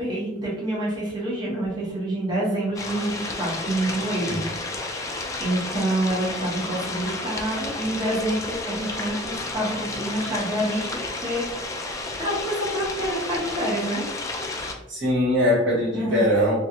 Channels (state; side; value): normal; both; correlation 0.43